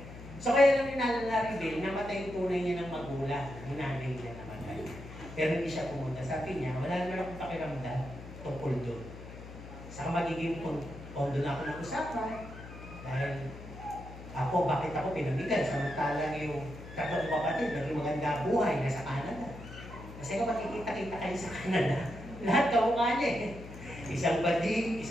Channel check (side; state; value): left; noise; hum, 13 dB below the sound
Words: So kaya lang ninalala rin, namatay yung tunay niya ng magulang, yung nanay niya namatay. Pero hindi siya pumunta. Sabi niya, wala naman akong pakiramdam tungkol doon. Saka magiging pondo na ako ng usapan. Dahil ako, bakit ako pinamigan? Samantalang yung tatlong kapatid, naging maganda buhay, nasa Canada. Kasi kung makikita-kita kayo sa Canada, lahat kamukha niya eh. Isang bading,